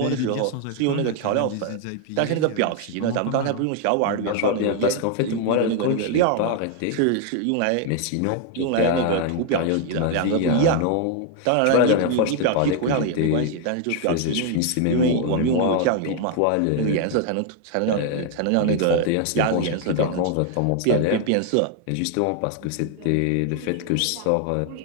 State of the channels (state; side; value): different; both; correlation 0.00